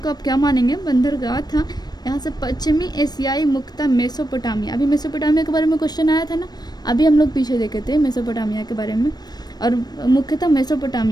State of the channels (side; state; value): right; late; 0.19 ms